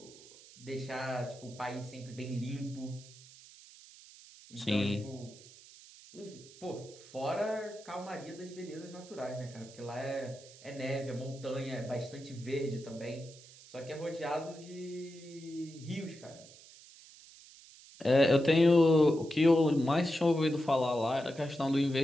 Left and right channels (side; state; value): right; noise; hiss, 20 dB below the sound